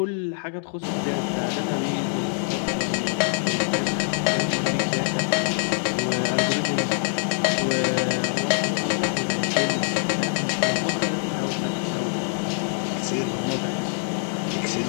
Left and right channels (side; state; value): right; silent; 62 dB below the other